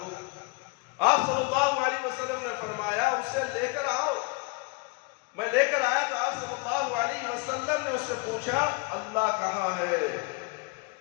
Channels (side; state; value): right; quieter; 27.4 dB